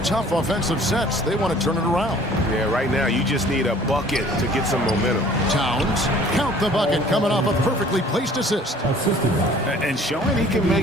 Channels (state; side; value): normal; both; correlation 0.52